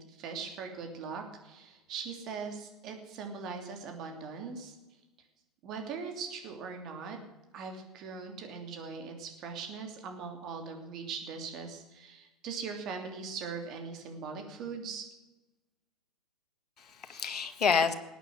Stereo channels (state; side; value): normal; both; correlation 0.44